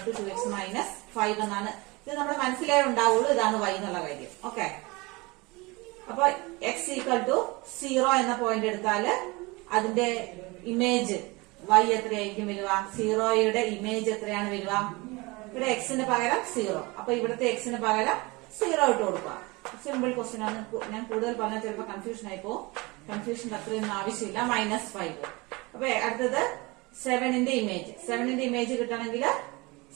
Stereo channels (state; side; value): quieter; left; 24.6 dB